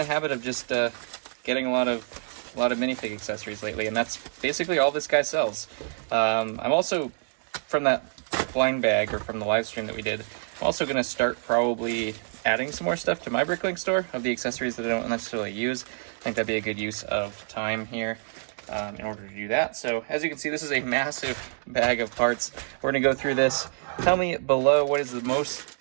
of just getting a lot of minifig accessories lately, and that's basically all this guy sells. I'm also from that blind bag, or from the live stream that we did, I'm also going to start probably adding some more stuff to my Bricklink store of the accessories that I don't necessarily use. I think that'd be a good use of time here in order to do that. So as you can see, this is a massive bag of parts. We're going to go through this. Tell me below what is the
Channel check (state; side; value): silent; left; 60 dB below the other